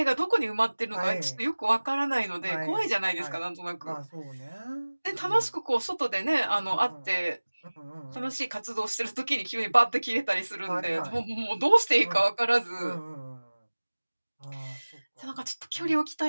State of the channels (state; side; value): inverted; both; correlation -1.00